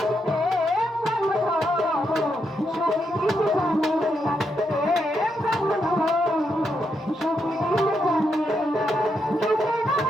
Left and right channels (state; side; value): normal; both; correlation 0.81